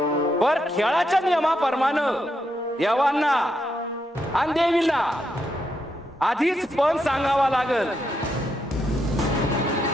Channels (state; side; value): normal; both; correlation 0.80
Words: पर खेळाच्या नियमाप्रमाणे देवांना आणि देवींना आधीच पण सांगावा लागल.